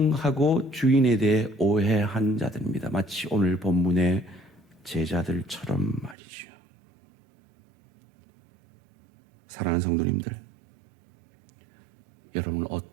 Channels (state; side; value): drops out; left; at 6.2 s